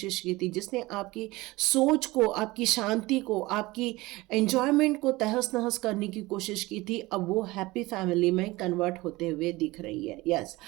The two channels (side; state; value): left; quieter; 20.6 dB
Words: की थी, जिसने आपकी सोच को, आपकी शांति को, आपकी एंजॉयमेंट को तहस नहस करने की कोशिश की थी, अब वो हैप्पी फैमिली में कन्वर्ट होते हुए दिख रही है। यस,